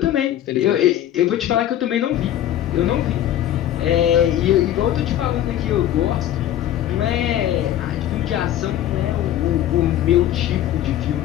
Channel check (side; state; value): right; quieter; 11.9 dB